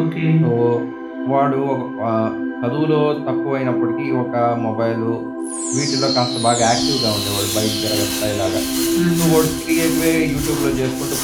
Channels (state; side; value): identical; both; correlation 1.00